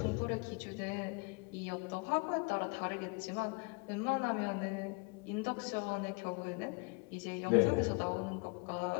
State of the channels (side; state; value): right; quieter; 29.7 dB